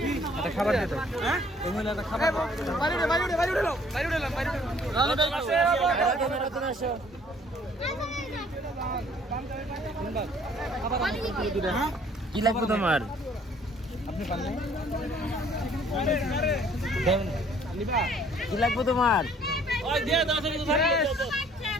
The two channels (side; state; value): both; normal; correlation 0.59